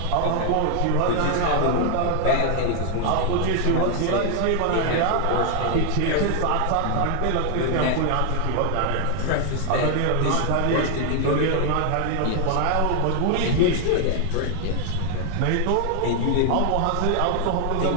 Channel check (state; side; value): different; both; correlation 0.00